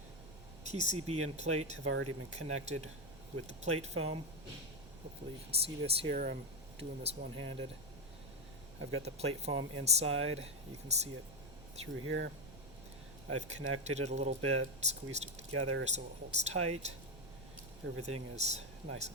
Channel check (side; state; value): right; noise; rumble, 17 dB below the sound